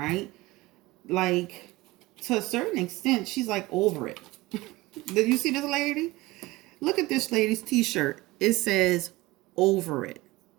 To a certain extent, she's over it. Did you see this lady? Look at this lady's t-shirt. It says, over it.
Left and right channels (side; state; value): left; quieter; 20.2 dB